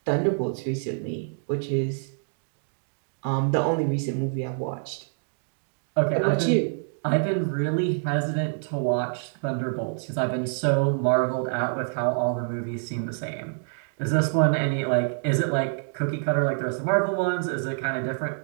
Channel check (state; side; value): silent; left; digital silence